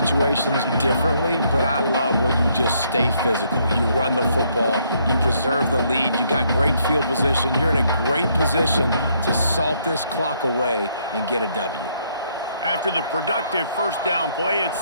differently, but I love when you just stay physical. You run the football, you preserve the lead, you got great field position. You're in a great position to salt this clock away and get a W. After the productive first down play,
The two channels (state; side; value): inverted; both; correlation -0.70